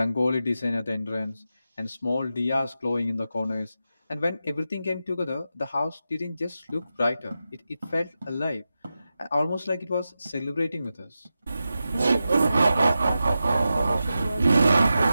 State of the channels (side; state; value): both; inverted; correlation -0.91